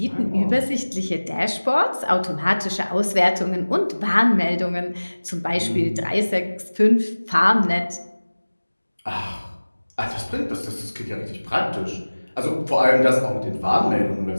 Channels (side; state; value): both; inverted; correlation -1.00